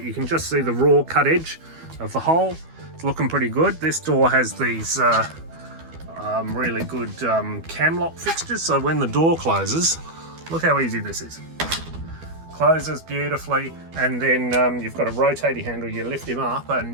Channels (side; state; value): left; late; 12 ms